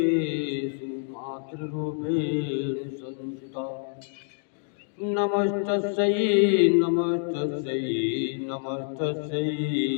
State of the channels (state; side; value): silent; right; 60 dB below the other